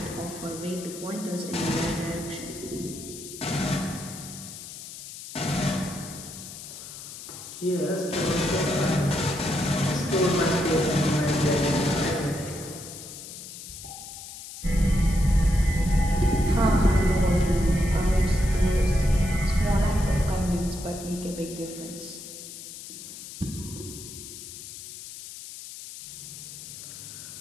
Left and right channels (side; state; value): left; noise; hiss, 12 dB below the sound